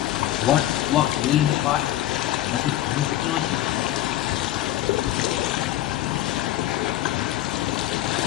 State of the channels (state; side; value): quieter; right; 14.1 dB